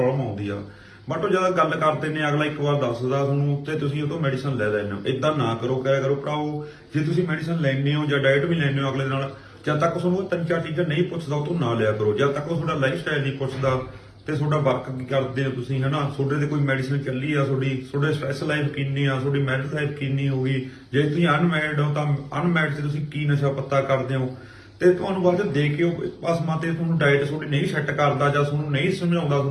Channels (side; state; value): both; identical; correlation 1.00